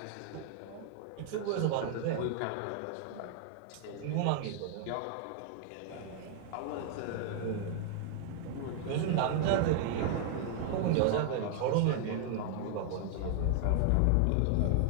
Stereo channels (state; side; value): different; both; correlation 0.00